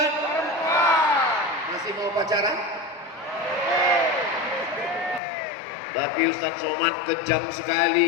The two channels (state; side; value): drops out; right; at 5.2 s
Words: Masih mau pacaran? Tapi Ustaz Somad kejam